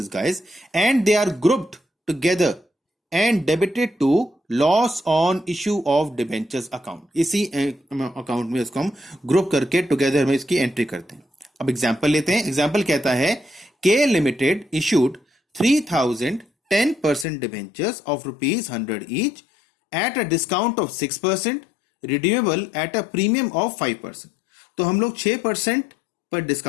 guys, and they are grouped together and debited to loss on issue of debentures account. इसी account में इसको हम group करके together में इसकी entry करते हैं। अब एग्जांपल लेते हैं। एग्जांपल कहता है के limited issued 3000 10% debentures of ₹100 each at a discount of 6%, redeemable at a premium of 5%। तो हम लोग 6% पर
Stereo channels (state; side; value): drops out; right; at 17.2 s